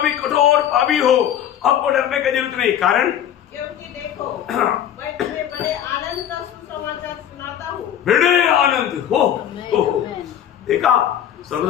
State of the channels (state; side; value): quieter; right; 10.2 dB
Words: भी कठोर पापी हो, आपको डरने की जरूरत नहीं। कारण क्योंकि देखो मैं तुम्हें बड़े आनंद का सुसमाचार सुनाता हूँ। बड़े आनंद हो देखा,